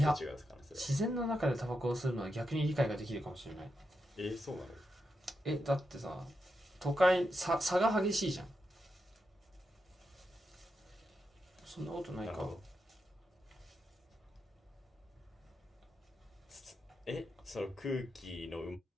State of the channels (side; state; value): both; normal; correlation 0.86